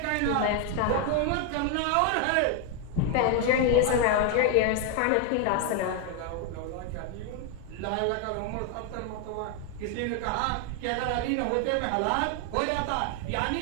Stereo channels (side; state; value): both; different; correlation 0.01